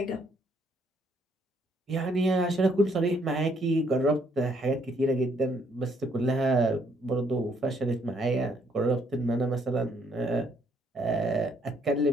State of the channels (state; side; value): normal; both; correlation 0.68